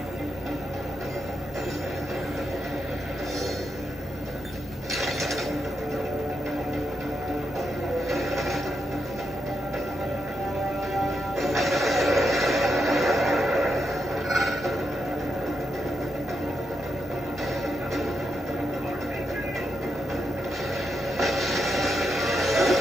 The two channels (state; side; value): normal; both; correlation 0.84